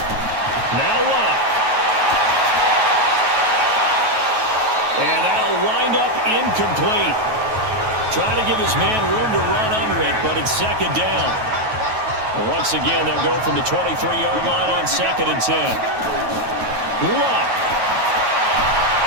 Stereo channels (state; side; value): late; left; 9.3 ms